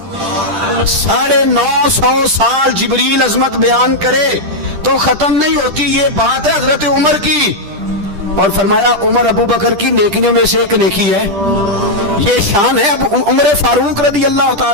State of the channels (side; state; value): left; late; 10 ms